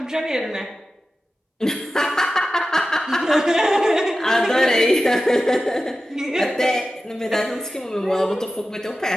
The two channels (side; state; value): both; normal; correlation 0.94